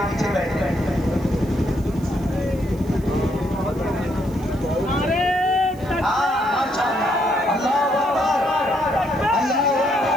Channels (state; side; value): noise; right; hiss, 25 dB below the sound